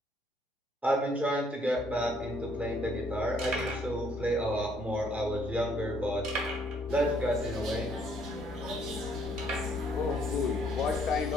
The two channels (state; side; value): normal; both; correlation 0.66